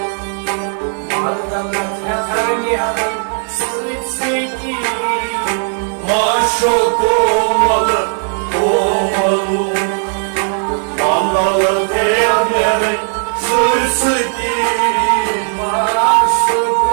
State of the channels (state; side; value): silent; left; 56 dB below the other